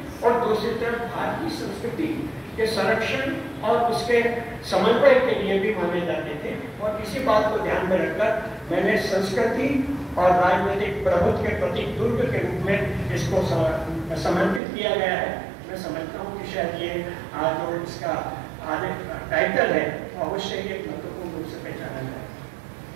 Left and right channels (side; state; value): left; drops out; at 14.6 s